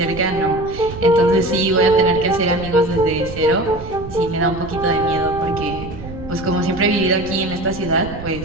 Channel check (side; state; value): right; noise; rumble, 12 dB below the sound